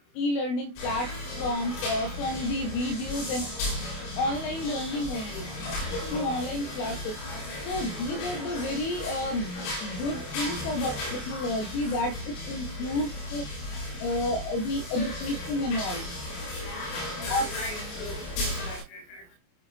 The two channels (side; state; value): right; late; 28 ms